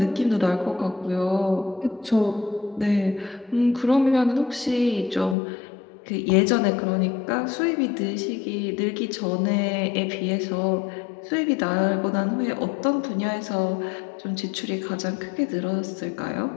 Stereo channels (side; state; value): right; drops out; at 5.4 s